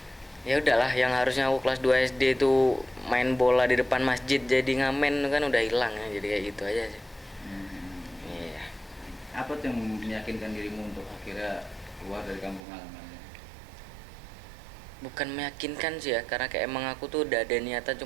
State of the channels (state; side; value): drops out; left; at 12.6 s